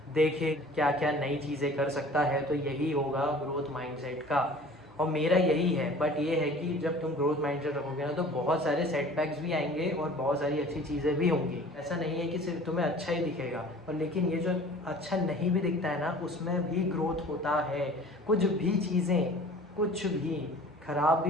देखे क्या क्या नई चीज़ें कर सकता है, तो यही होगा ग्रोथ माइंडसेट का। और मेरा यही है। बट ये है कि जब तुम ग्रोथ माइंडसेट रखोगे ना तो बहुत सारे सेटबैक्स भी आएंगे और बहुत सारी अच्छी चीज़ें भी होंगी। ऐसा नहीं है कि सिर्फ तुम्हें अच्छा ही दिखेगा, और लेकिन ये जो अच्छा नहीं भी दिखता है ना, उसमें भी ग्रोथ होता है। कुछ भी चीज़ें, कुछ भी ख़राब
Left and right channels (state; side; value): normal; both; correlation 0.46